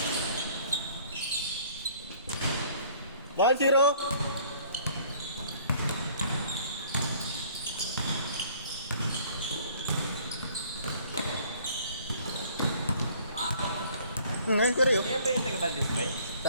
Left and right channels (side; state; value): both; inverted; correlation -0.56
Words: Ball zero. Ngayon ko rin yun. Yan ba yung taga-Valdez ba?